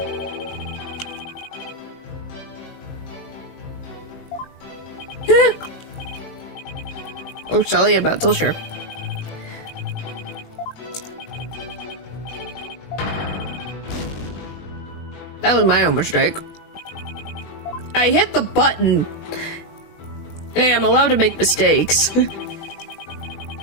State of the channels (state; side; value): late; right; 20 ms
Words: Oh, Sally, I'm not so sure. That was my own mistake. I hit the button. Hey, I'm allowed to make mistakes.